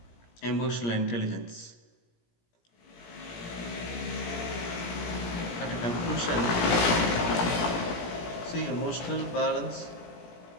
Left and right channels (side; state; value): right; late; 18 ms